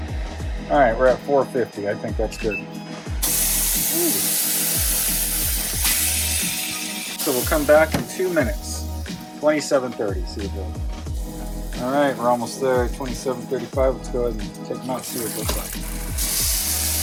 All right, we're at 450. I think that's good. Ooh. So we'll come back in 2 minutes. 27:30. See it goes. All right, we're almost there. 27:35. Let's go ahead and take them out. See what it looks like.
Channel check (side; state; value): both; identical; correlation 1.00